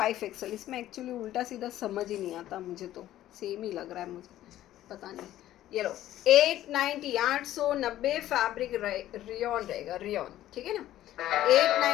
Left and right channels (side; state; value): right; quieter; 13.5 dB